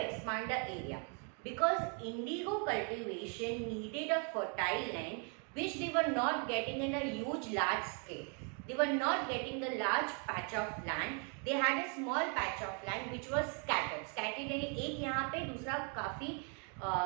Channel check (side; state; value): left; quieter; 39.2 dB